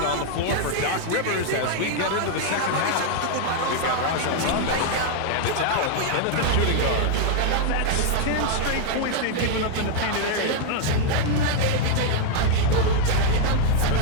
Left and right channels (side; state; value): both; different; correlation 0.00